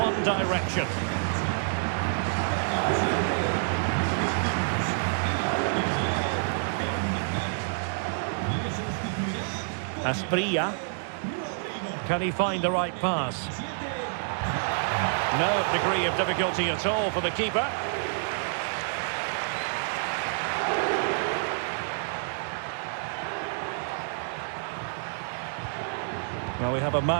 direction. Asprilla. Can he find the right pass? No degree of difficulty at all for the keeper. Well, we have a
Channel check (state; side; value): silent; left; digital silence